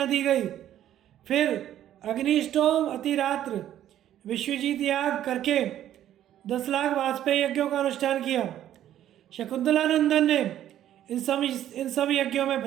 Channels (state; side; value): quieter; left; 11.7 dB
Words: दी गई। फिर अग्निष्टोम अतिरात्र विश्वजीत याग करके 10 लाख वाजपेयी यज्ञों का अनुष्ठान किया। शकुंतलानंदन ने इन सब यज्ञों में